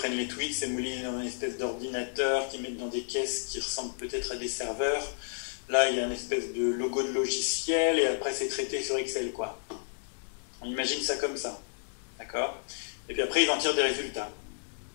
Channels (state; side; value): silent; right; 57 dB below the other